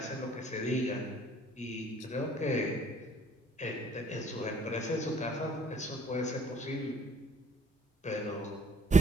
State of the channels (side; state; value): both; normal; correlation 0.59